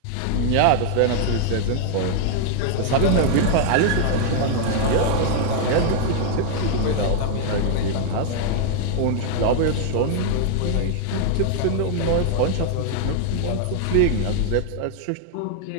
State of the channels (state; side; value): different; both; correlation 0.00